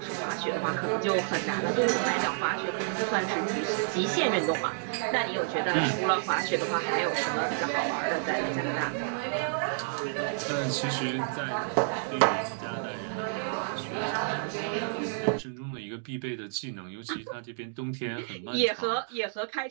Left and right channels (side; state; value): left; silent; digital silence